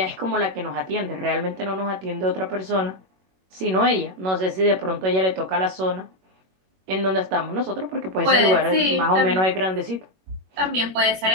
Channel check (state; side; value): late; left; 21 ms